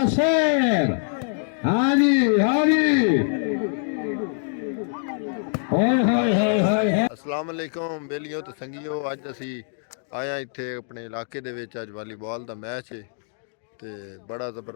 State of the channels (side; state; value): right; silent; digital silence